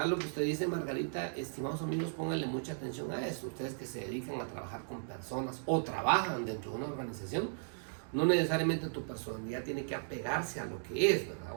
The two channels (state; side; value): silent; left; digital silence